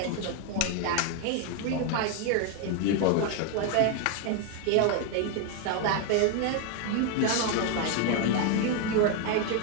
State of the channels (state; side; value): different; both; correlation 0.01